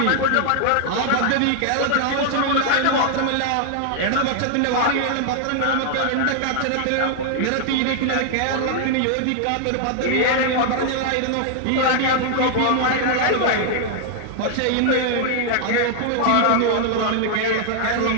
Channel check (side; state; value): both; different; correlation 0.00